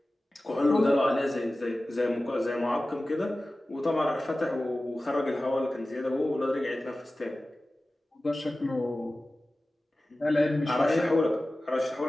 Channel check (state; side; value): normal; both; correlation 0.96